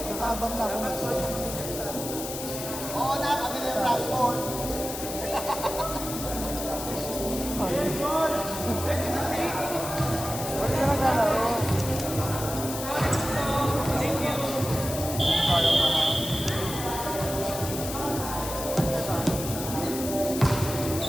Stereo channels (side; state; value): left; noise; hiss, 7 dB below the sound